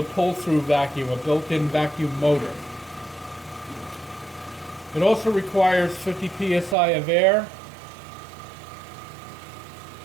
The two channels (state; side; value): drops out; left; at 6.8 s